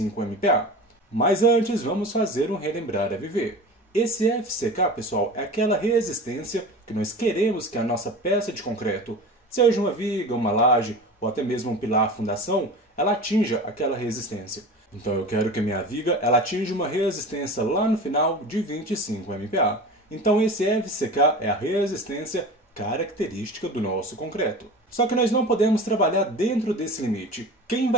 MPa. Mas antes, vamos fazer um relembrar a viver. Esse FCK, pessoal, é aquela resistência que nós queremos que a nossa peça de concreto, seja uma viga, uma laje ou até mesmo um pilar fundação, ela atinja aquela resistência. Então eu quero que a minha viga ela atinja uma resistência lá no final de 25 MPa. Então esse FCK é a resistência característica do nosso concreto. Só que nós não podemos trabalhar dentro desse limite. Quem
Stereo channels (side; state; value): both; normal; correlation 0.34